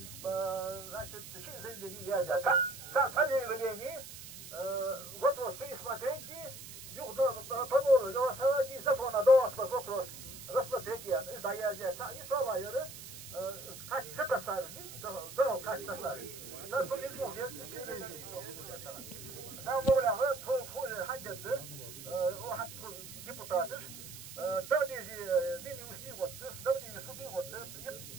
значит, заявление Язя. Заявление, вопрос пересмотрения, по новому голосованию закона до вопрос рассмотрения, да Язя, и Шалайра, kaç tasarruf, doğal kaç tasarruf. Ben bunu bilmiyorum, ben böyle tofu haddedir, o hatta deputatır. Dağdeci beni üstü koydu, dağdeci sudu koydu.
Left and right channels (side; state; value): right; noise; hiss, 13 dB below the sound